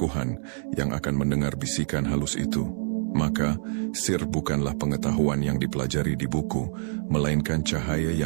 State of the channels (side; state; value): left; silent; 61 dB below the other